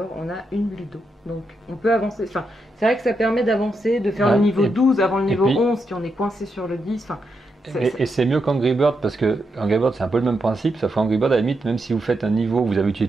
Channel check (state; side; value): normal; both; correlation 0.83